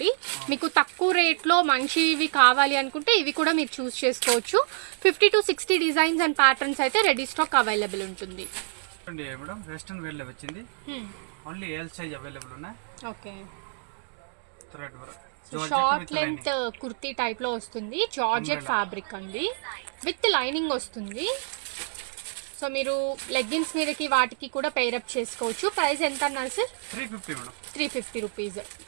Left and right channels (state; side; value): silent; left; digital silence